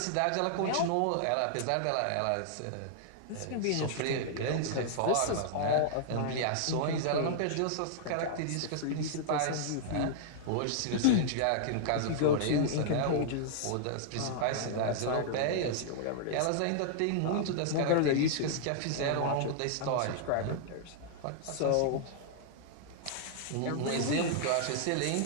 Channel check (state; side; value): different; both; correlation -0.01